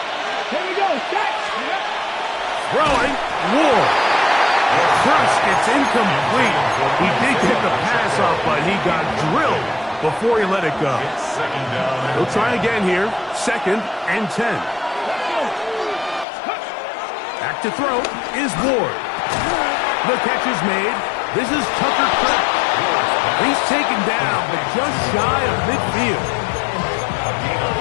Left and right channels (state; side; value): drops out; right; at 16.2 s